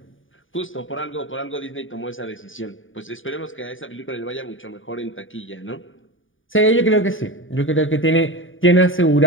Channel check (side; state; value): right; late; 0.57 ms